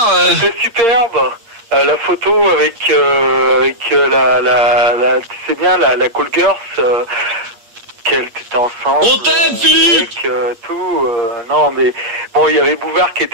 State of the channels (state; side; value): late; left; 8.6 ms